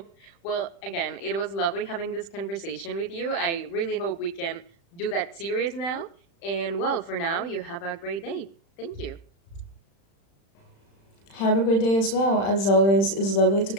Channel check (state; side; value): late; right; 35 ms